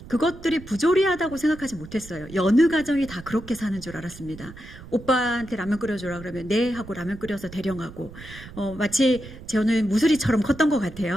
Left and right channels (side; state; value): right; noise; rumble, 16 dB below the sound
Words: 그것들이 부조리하다고 생각하지 못했어요. 여느 가정이 다 그렇게 사는 줄 알았습니다. 오빠한테 라면 끓여줘라 그러면 네 하고 라면 끓여서 대령하고 마치 저는 무수리처럼 컸던 것